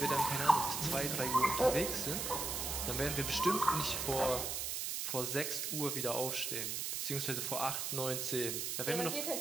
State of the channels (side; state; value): right; noise; hiss, 2 dB below the sound